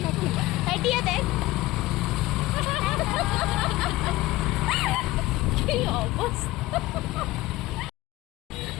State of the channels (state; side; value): quieter; right; 18.4 dB